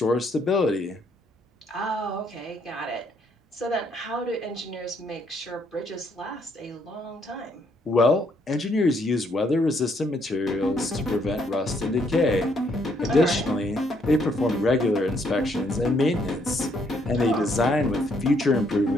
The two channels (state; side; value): normal; both; correlation 0.70